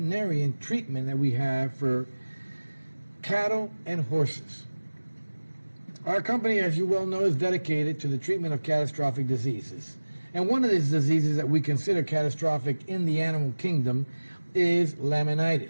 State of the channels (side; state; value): both; inverted; correlation -1.00